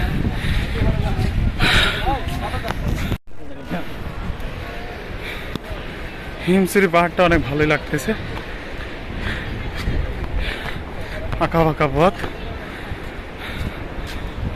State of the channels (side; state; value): both; identical; correlation 1.00